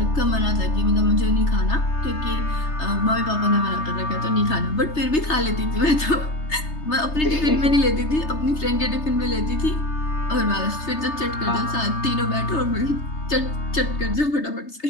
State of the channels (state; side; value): late; right; 3.3 ms